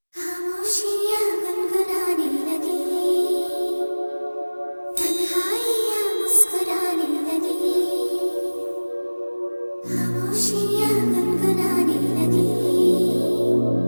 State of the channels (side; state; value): both; inverted; correlation -1.00